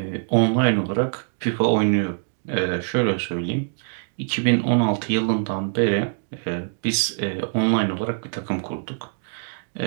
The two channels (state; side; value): silent; left; digital silence